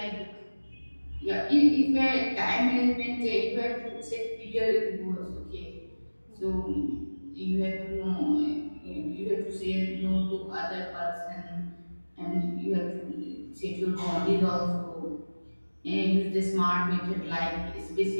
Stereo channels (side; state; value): both; inverted; correlation -1.00